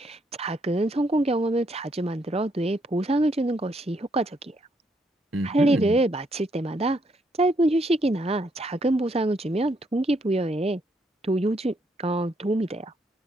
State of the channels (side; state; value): both; normal; correlation 0.74